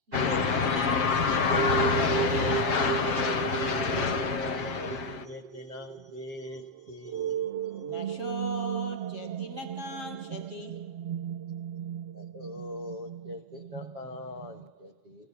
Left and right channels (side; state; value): left; late; 7.5 ms